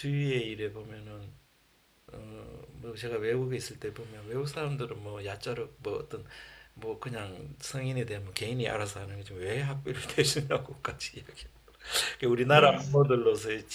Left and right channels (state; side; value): identical; both; correlation 1.00